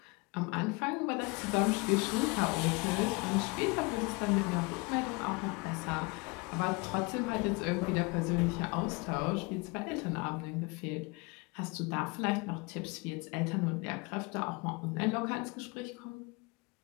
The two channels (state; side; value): quieter; right; 27.5 dB